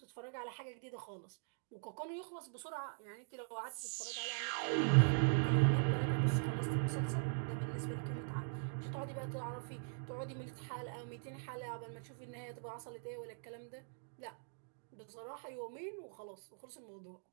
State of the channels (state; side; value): silent; left; digital silence